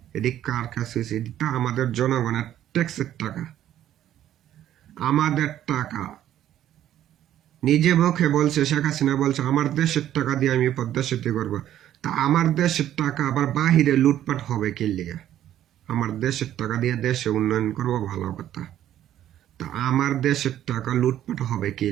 এটি কার কাছে হয়েছে? এটা আমাদের জনগণের ট্যাক্সের টাকা, আমাদের টাকা। নিজে মুখে বলছে, শেখ হাসিনা বলছে আমার দেশের টাকা দিয়ে আমি পদ্মা সেতু করবো। তা আমার দেশের টাকা আবার বাহিরে লুটপাট হবে কি লিগা? আমার দেশের টাকা দিয়ে দেশে উন্নয়ন করবো, ভালো কথা। তা আমার দেশের টাকা লুটপাট হবে কি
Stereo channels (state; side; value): quieter; left; 11.8 dB